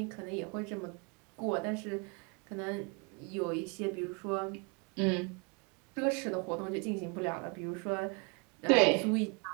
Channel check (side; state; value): left; quieter; 32.3 dB